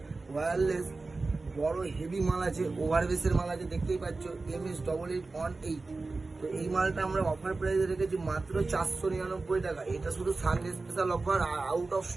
ওয়্যারলেস বড় হেভি মাল আছে, ওভারবেসের মাল আছে, দেখতেই পাচ্ছ MS8818। তো এই মালটা আমরা অফার প্রাইসে রেখেছি মাত্র 499 টাকা। এটা শুধু Sunday special offer, out of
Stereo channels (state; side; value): quieter; left; 3.6 dB